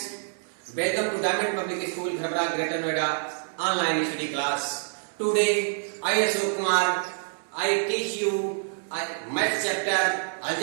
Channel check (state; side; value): silent; left; 60 dB below the other